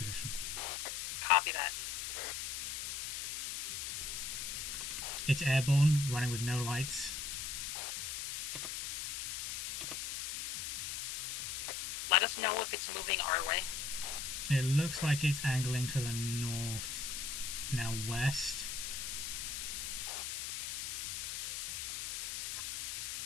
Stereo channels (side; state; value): left; noise; hiss, 3 dB below the sound